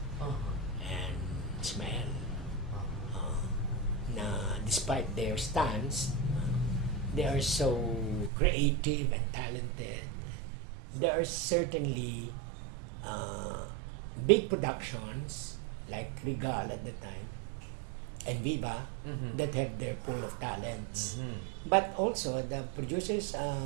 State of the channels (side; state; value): left; drops out; at 8.3 s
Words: Uh-huh. and Ishmael. Na despite their stance, they are so creative and talented. There are certainly big productions like Regal at the time and Viva that have their pool of talents. But also the producers